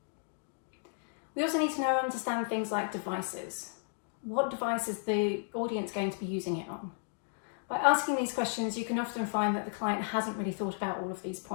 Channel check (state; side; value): silent; right; digital silence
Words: We also need to understand things like devices. What device is the audience going to be using it on? By asking these questions, you can often find that the client hasn't really thought about all of these